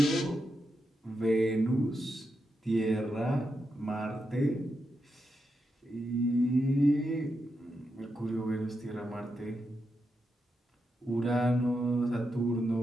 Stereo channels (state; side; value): normal; both; correlation 0.86